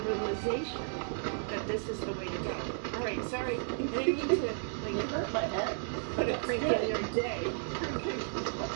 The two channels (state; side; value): silent; left; 55 dB below the other